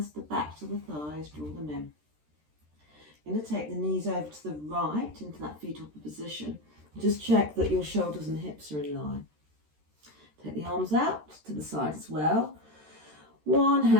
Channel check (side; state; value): left; late; 13 ms